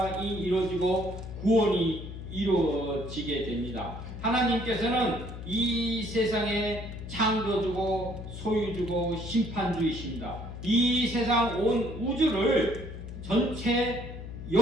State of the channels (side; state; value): left; noise; hum, 9 dB below the sound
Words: 이루어지고 구원이 이루어지게 됩니다. 하나님께서는 이 세상에 창조주고 소유주고 심판주이십니다. 이 세상 온 우주를 전체